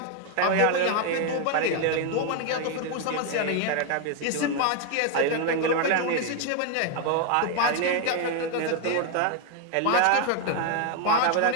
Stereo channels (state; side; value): different; both; correlation 0.01